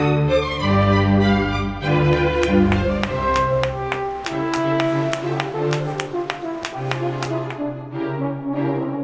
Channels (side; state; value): both; identical; correlation 1.00